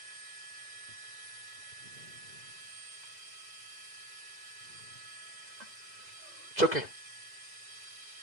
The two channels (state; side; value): late; right; 2.0 ms